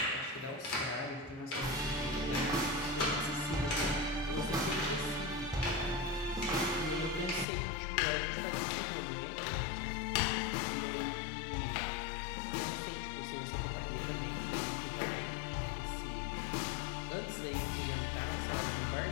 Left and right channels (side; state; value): right; drops out; at 7.5 s